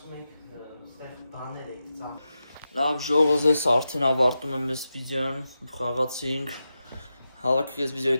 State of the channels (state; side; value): inverted; both; correlation -0.90